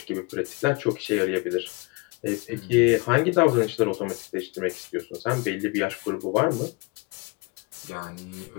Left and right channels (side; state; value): right; quieter; 28.1 dB